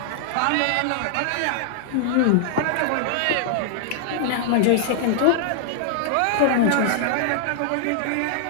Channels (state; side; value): different; both; correlation -0.01